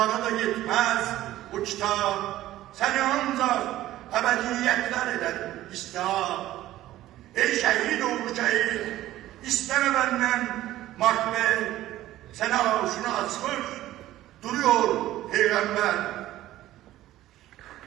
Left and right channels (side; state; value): left; quieter; 14.7 dB